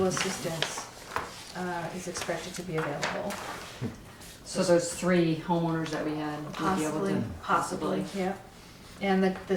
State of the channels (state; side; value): identical; both; correlation 1.00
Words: assistance is expected to be available. So those 3 homeowners that we had would be able to. Possibly, yeah. And